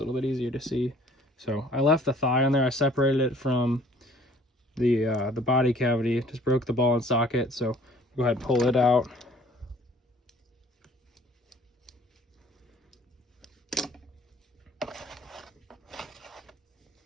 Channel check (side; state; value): both; normal; correlation 0.54